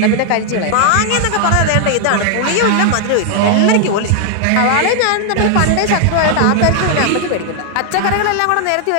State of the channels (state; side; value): different; both; correlation 0.00